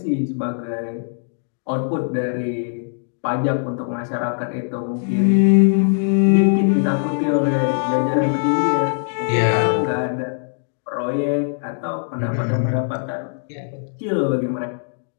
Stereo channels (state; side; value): silent; right; digital silence